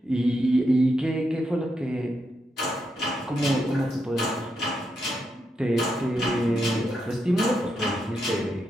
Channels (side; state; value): both; normal; correlation 0.83